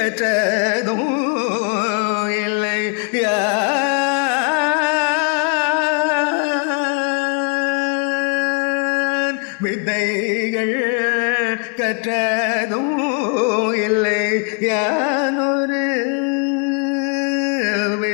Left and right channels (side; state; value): right; quieter; 36.4 dB